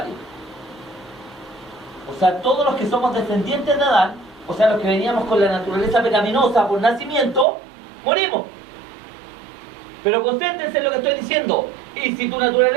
O sea, todos los que somos descendientes de Adán, o sea, los que veníamos con la naturaleza pecaminosa por nacimiento, morimos. Pero concéntrense en lo que estoy diciendo. Y si tu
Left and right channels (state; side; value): drops out; left; at 7.5 s